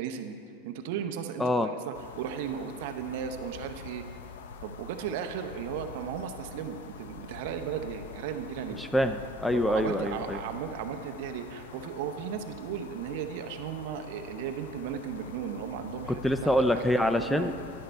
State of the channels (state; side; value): normal; both; correlation 0.52